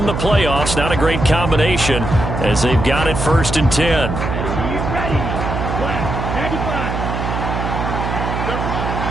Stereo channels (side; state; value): right; noise; hum, 3 dB below the sound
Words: the playoffs. Not a great combination as they've got it 1st and 10.